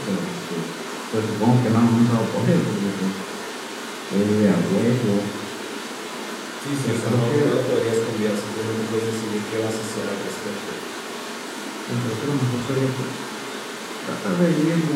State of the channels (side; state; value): both; identical; correlation 1.00